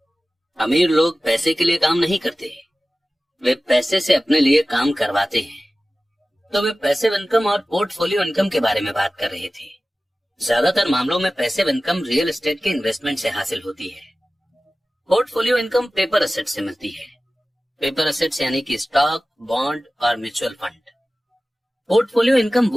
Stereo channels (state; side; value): normal; both; correlation 0.96